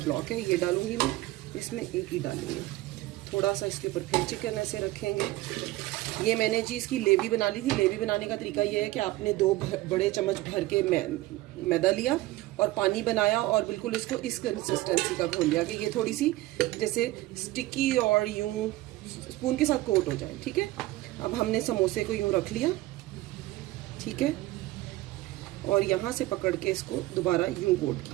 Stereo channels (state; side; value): quieter; left; 17.8 dB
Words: है, ये डालूंगी मैं इसमें, एक ही डालेंगे। थोड़ा सा इसके ऊपर फिर चिकन ऐसे रखेंगे। ये मैंने जी इसकी लेवी बना ली थी। लेवी बनाने का तरीका ये है कि आपने 2 बड़े चम्मच भर के मैदा लिया और पानी बनाया और बिल्कुल इसको इस कंसिस्टेंसी का घोल लिया कि ये थोड़ी सी जैसे स्टिकी और यूं स्पून के साथ कोट हो जाए, ठीक है। अब हमने समोसे को यूं रख लिया, ठीक है, और यहाँ से पकड़ के इसको दोबारा यूं कोट